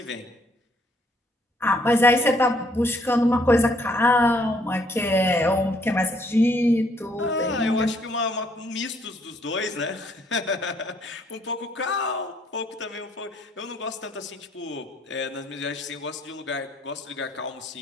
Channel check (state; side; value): normal; both; correlation 0.67